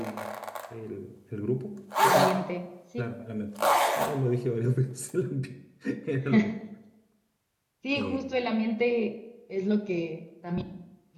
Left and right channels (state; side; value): identical; both; correlation 1.00